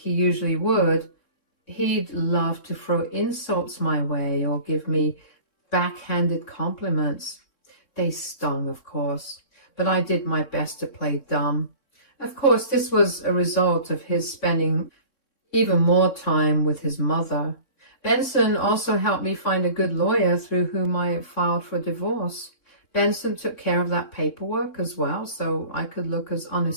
usually would, he'd love to throw insults my way or give me backhanded compliments. They stung, of course, but I did my best to play dumb. Of course, this was a result of his spending even more time with his mother. Benson also helped me find a good lawyer through whom I filed for divorce. Benson took care of that paperwork as well, so I could look as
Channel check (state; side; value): late; right; 3.6 ms